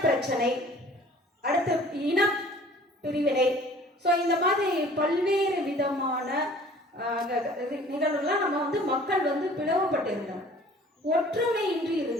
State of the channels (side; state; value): both; normal; correlation 0.50